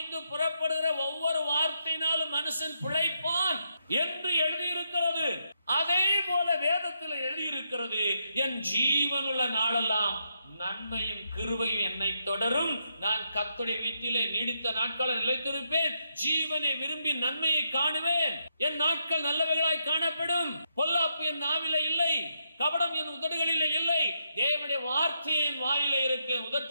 புறப்படுகிற ஒவ்வொரு வார்த்தையினாலும் மனுஷன் பிழைப்பான் என்று எழுதியிருக்கிறது. அதே போல வேதத்தில் எழுதியிருக்கிறது, என் ஜீவனுள்ள நாளெல்லாம் நன்மையும் கிருபையும் என்னை தொடரும். நான் கர்த்தருடைய வீட்டிலே நீடித்த நாட்களை நிலைத்திருப்பேன். ஜீவனை விரும்பி நன்மையை காணுவேன். என் நாட்கள் நல்லவைகளாய் காணப்படும். பொல்லாப்பு என் நாவிலே இல்லை, கபடம் என் உதடுகளிலே இல்லை. தேவனுடைய வார்த்தை என் வாயிலே இருக்கு,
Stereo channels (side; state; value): both; inverted; correlation -0.80